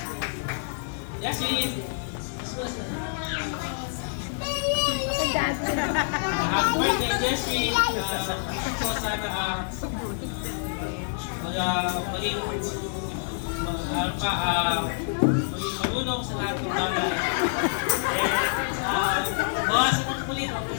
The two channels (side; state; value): right; silent; digital silence